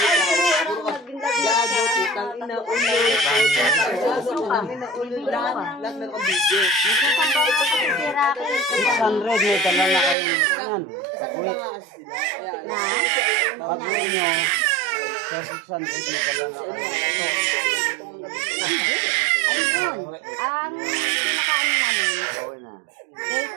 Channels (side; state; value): left; drops out; at 10.2 s